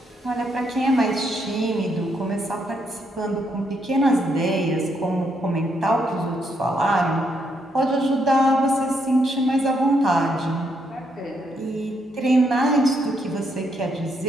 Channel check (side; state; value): both; normal; correlation 0.76